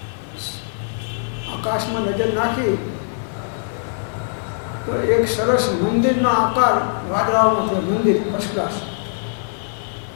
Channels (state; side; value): silent; right; digital silence